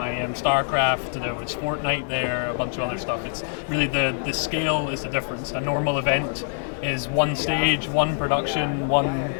StarCraft, there was Fortnite there, a bunch of other stuff. It's really the scale is the difference. A normal event is one stage, one production, one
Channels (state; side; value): silent; right; digital silence